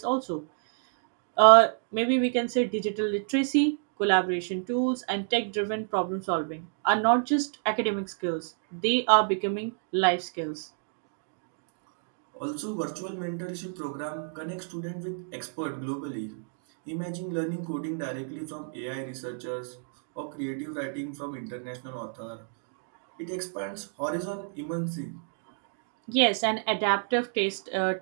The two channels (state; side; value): silent; left; digital silence